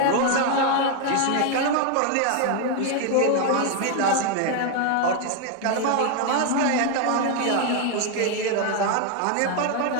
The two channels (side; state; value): both; different; correlation 0.01